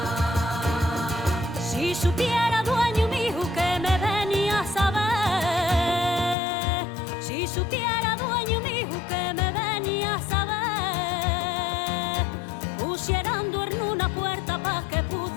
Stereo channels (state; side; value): drops out; right; at 6.4 s